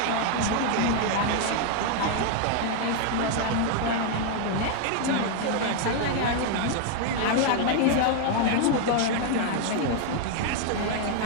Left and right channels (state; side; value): different; both; correlation 0.00